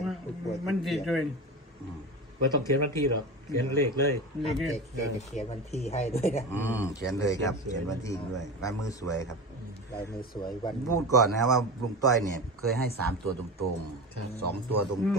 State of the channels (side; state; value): both; normal; correlation 0.27